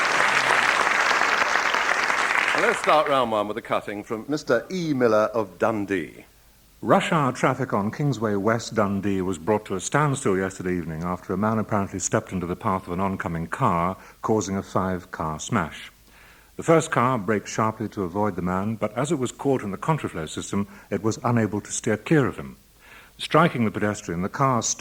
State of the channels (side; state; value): both; identical; correlation 1.00